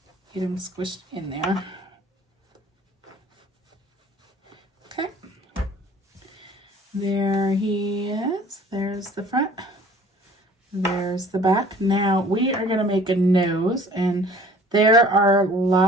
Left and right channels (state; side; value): normal; both; correlation 0.51